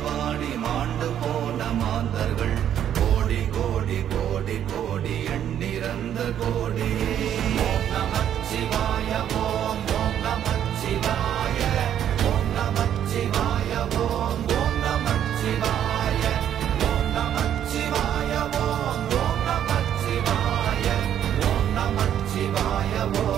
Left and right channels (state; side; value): quieter; left; 10.1 dB